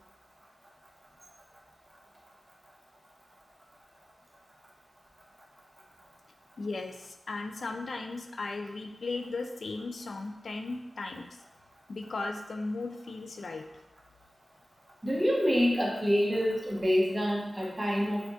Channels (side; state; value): both; normal; correlation 0.96